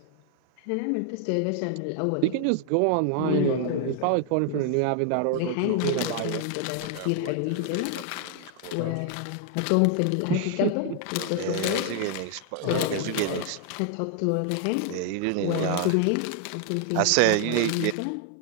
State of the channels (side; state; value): both; different; correlation 0.00